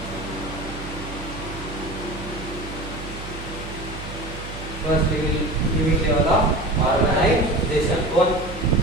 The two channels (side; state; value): right; noise; hum, 11 dB below the sound